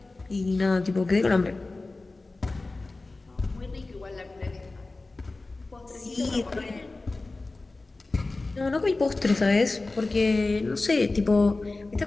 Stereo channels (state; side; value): quieter; right; 3.3 dB